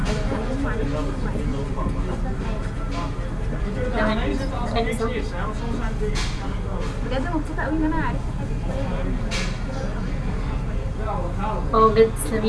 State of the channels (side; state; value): both; identical; correlation 1.00